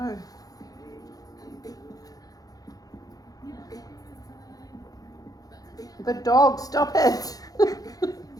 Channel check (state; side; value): late; right; 0.18 ms